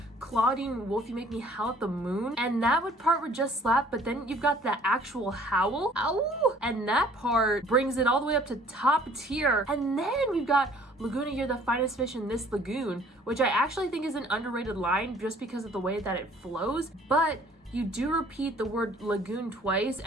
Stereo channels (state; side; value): normal; both; correlation 0.55